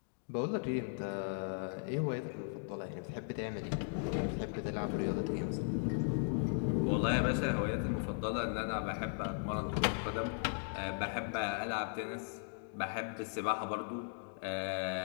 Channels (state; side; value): silent; right; digital silence